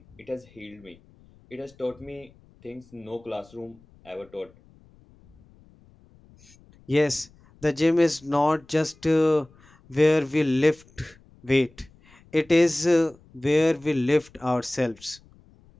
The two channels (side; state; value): left; noise; rumble, 28 dB below the sound